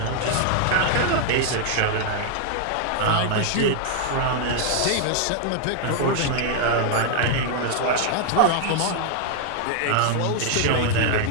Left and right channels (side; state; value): both; different; correlation 0.00